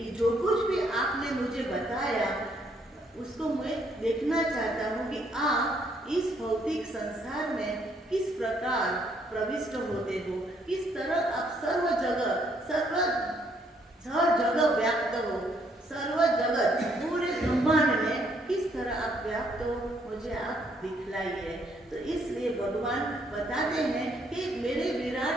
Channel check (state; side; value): normal; both; correlation 0.69